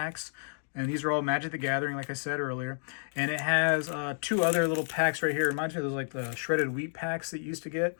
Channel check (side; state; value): right; silent; digital silence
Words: And these are all Magic the Gathering, like I said earlier. And it has 2 other little packs right here. Reminds me of those like the shredded wheat packs that you used to get.